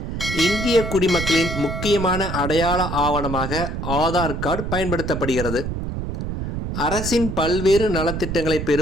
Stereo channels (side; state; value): right; noise; rumble, 4 dB below the sound